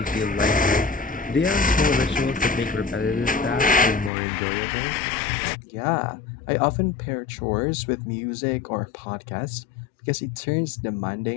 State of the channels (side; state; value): right; drops out; at 4.1 s